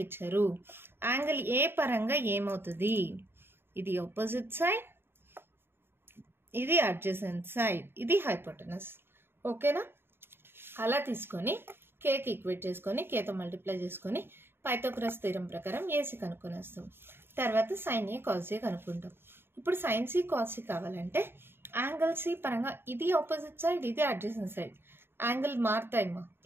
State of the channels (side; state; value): left; late; 0.11 ms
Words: ఇచ్చారు. యాంగిల్ ఏ పరంగా ఏమవుతుంది? ఇది ఆపోజిట్ సైడ్, ఇది అడ్జసెంట్ సైడ్, ఇది హైపోటెనస్. ఓకేనా? అలా తీసుకొని కేకి ఈక్వేట్ చేసుకొని కేతో మల్టిప్లై చేసుకొని పైథాగరస్ థీరం ప్రకారం ఏసీ కనుక్కొనేస్తాం. తర్వాత sin A cos A కనుక్కుంటాం. ఇప్పుడు sin C cos C కావాలంటే యాంగిల్ సి పరంగా ఇది ఆపోజిట్ సైడ్, ఇది అడ్జసెంట్ సైడ్. యాంగిల్ మారుతాయమ్మా,